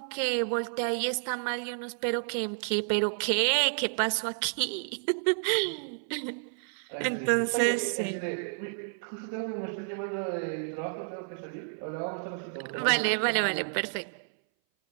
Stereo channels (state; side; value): silent; left; 57 dB below the other